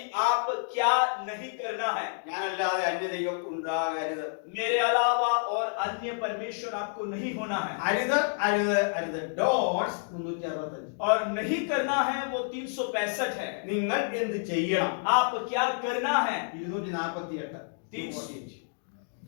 आप क्या नहीं करना है. ഞാനല്ലാതെ അന്യദൈവം ഉണ്ടാകരുത്. मेरे अलावा और अन्य परमेश्वर आपको नहीं होना है. അരുത് അരുത് അരുത്. ഡോട്ട്സ് 365. और नहीं करना है वो 365 है. നിങ്ങൾ എന്ത് ചെയ്യണം? आप क्या करना है. 248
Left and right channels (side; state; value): right; silent; digital silence